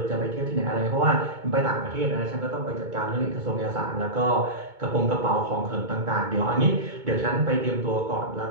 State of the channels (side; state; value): left; late; 2.2 ms